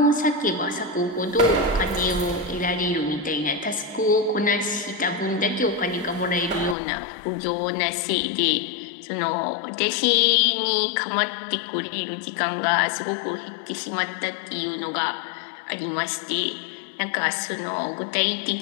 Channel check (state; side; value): drops out; right; at 6.8 s